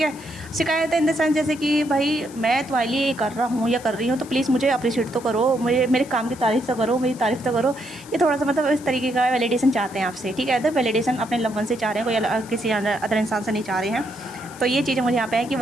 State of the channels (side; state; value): left; noise; hiss, 20 dB below the sound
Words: है। शिकायतें इन द सेंस जैसे कि भाई मैं तुम्हारे लिए ये कर रहा हूँ या कर रही हूँ, तो प्लीज़ मुझे अप्रिशिएट तो करो, मुझे मेरे काम की तारीफ़ तो करो, मेरी तारीफ़ तो करो। ये थोड़ा सा मतलब इस तरीके का वैलिडेशन चाहते हैं आपसे, ठीक है। तो वैलिडेशन अपने लव वन से चाह रहे हैं, कोई किसी अदर इंसान से नहीं चाह रहे हैं। तो ये चीज़ें मुझे यहाँ पे है कि